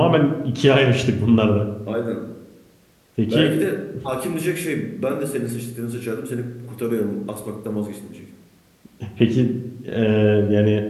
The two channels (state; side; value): identical; both; correlation 1.00